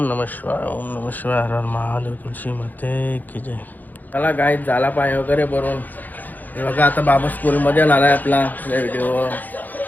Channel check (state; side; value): late; right; 0.084 ms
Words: नमः शिवाय, ओम नमः शिवाय, हर हर महादेव, तुळशी माते की जय. चला गाईज झाला पाय वगैरे भरून. हे बघा आता बाबा स्कूलमध्ये आलाय आपला व्हिडिओ.